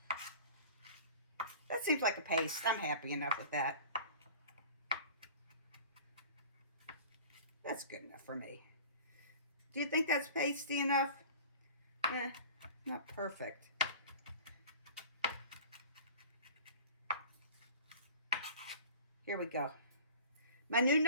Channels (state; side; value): inverted; both; correlation -0.42